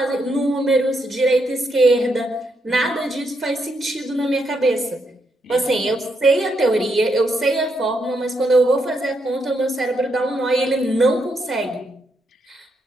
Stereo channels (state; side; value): normal; both; correlation 0.79